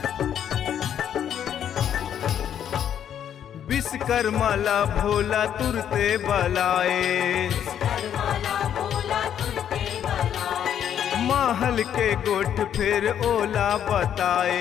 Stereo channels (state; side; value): quieter; right; 9.5 dB